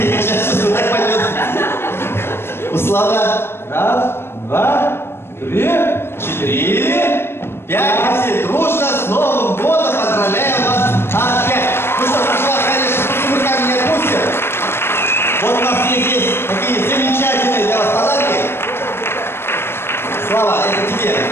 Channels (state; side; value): late; right; 0.12 ms